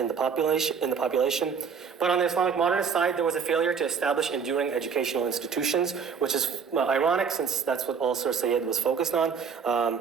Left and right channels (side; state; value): left; quieter; 6.2 dB